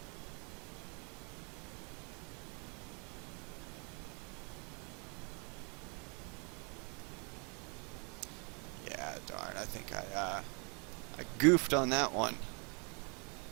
Yeah, darn, I think I goofed on that one.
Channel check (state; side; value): quieter; left; 34.7 dB